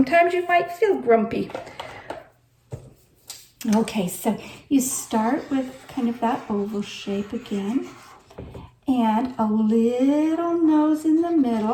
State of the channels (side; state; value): both; identical; correlation 1.00